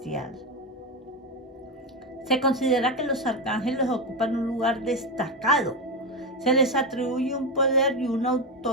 se considera que los arcángeles ocupan un lugar destacado. Se les atribuye un poder y una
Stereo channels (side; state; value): both; normal; correlation 0.13